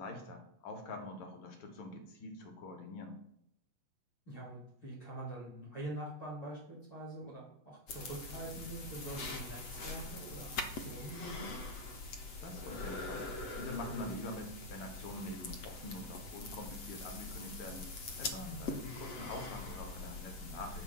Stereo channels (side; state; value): right; late; 7.9 ms